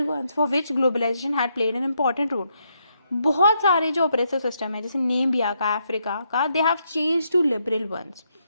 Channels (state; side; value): inverted; both; correlation -0.78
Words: ones for which globalization had played an important role. बहुत सारे जो oppressive system है जैसे नेमिबिया का, अफ्रीका का, they have changed to liberal ones.